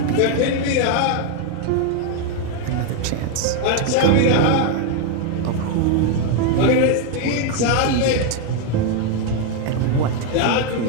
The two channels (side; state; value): both; different; correlation 0.01